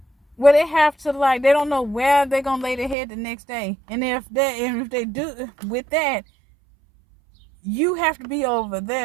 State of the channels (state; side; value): drops out; left; at 3.0 s